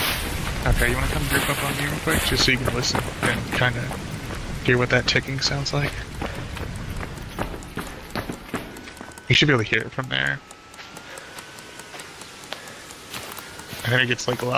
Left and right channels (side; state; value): both; identical; correlation 1.00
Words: Okay, you want to come group up on me real quick, just so you can listen and kind of hear what that ticking sounds like? You should be able to hear it from there. And then it gets, like,